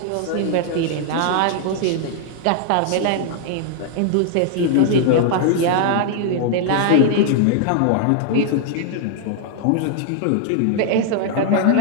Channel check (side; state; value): both; different; correlation 0.00